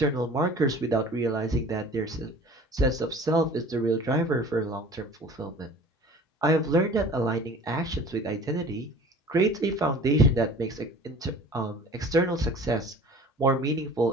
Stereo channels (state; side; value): normal; both; correlation 0.45